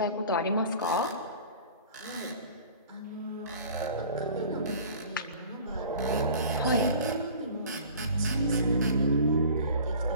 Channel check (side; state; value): both; inverted; correlation -0.44